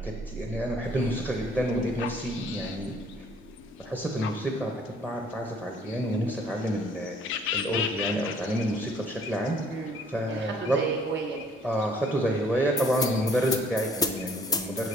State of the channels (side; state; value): both; normal; correlation 0.59